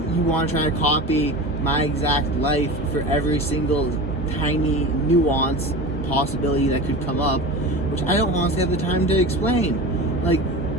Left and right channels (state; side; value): normal; both; correlation 0.30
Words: you want to try to copy my exact life for every single tiny nuance possibility that could come up, which I don't honestly have the time to explain, like,